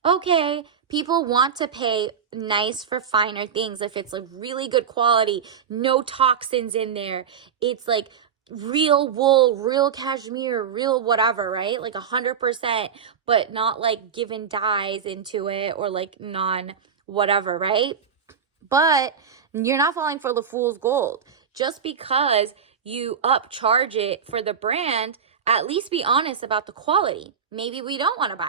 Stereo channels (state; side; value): quieter; left; 7.1 dB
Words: okay, people want to pay nice for finer things if it's like really good quality, no toxins in there. It's like real wool, real cashmere, real whatever, right? Like 100%, but not like given dyes into it or like non whatever, right? But you're not falling for the fool's gold. Just because you upcharge it for the brand, at least be honest about the quality. Maybe we don't want to